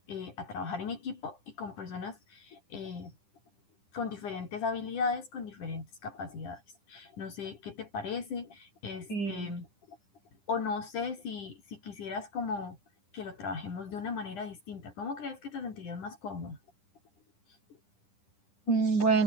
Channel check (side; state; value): right; late; 10 ms